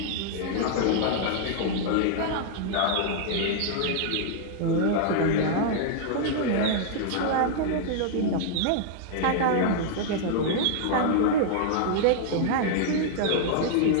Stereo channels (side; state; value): both; different; correlation -0.01